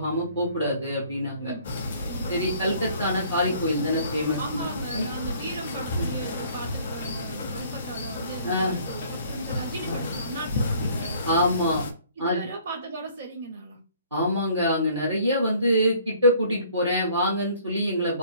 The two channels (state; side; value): inverted; both; correlation -0.56